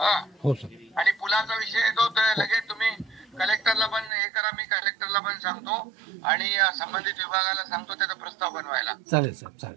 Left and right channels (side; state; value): left; drops out; at 4.1 s